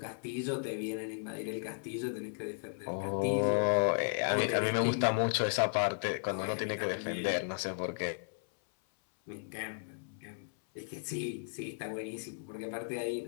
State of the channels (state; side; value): silent; right; 55 dB below the other